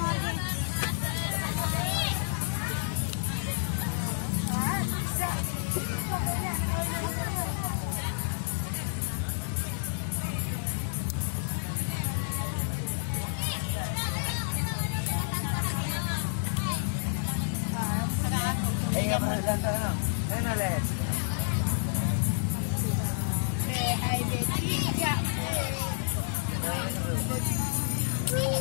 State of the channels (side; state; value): right; silent; digital silence